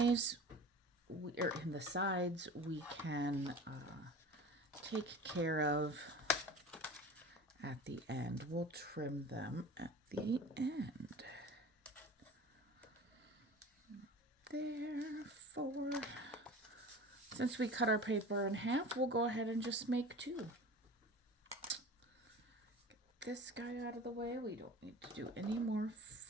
or in the sides, we can take care of at the end. We'll trim them at the end. There, 4. Since we cut our paper in half, we'll go ahead and just make 2. Get this guy out of the way. We don't need to do any more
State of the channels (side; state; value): both; normal; correlation 0.38